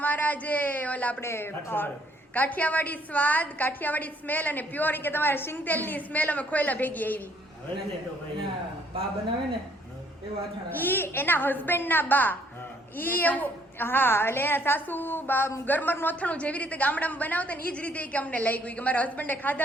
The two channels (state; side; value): normal; both; correlation 0.65